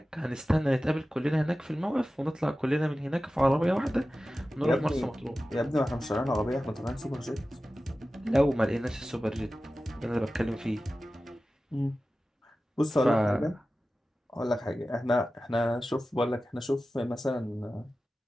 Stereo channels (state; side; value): normal; both; correlation 0.95